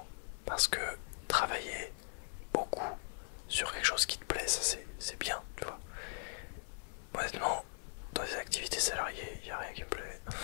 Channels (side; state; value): right; silent; 51 dB below the other